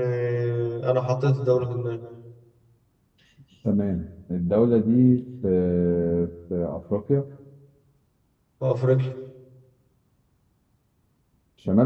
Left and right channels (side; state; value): both; identical; correlation 1.00